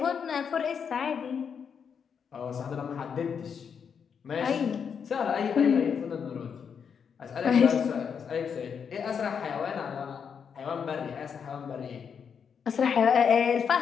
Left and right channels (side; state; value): right; quieter; 6.9 dB